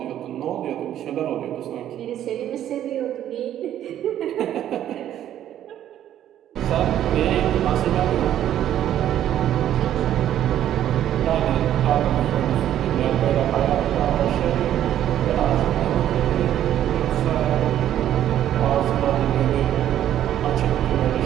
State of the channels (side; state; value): left; quieter; 11.4 dB